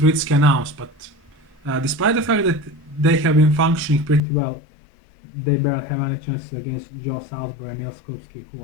announced, but despite the fact that they have been functioning pretty well, they barely have any chances against Joe Salisbury and Nils Skupski, who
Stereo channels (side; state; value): right; drops out; at 4.2 s